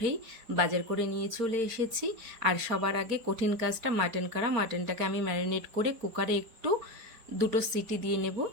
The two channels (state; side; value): late; left; 4.4 ms